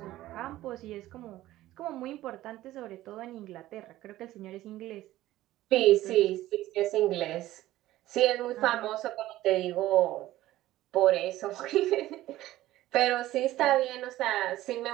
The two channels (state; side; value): quieter; left; 15.4 dB